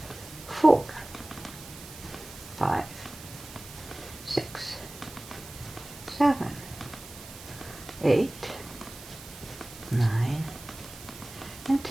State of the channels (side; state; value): right; noise; hiss, 16 dB below the sound